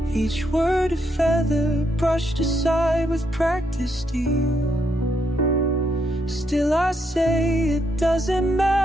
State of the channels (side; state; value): both; normal; correlation 0.77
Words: Each word a feather brushed aside with practiced ease. Still I say it doesn't